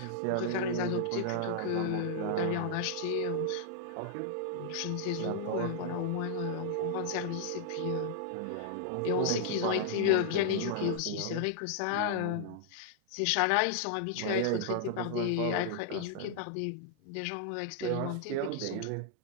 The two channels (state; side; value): different; both; correlation -0.01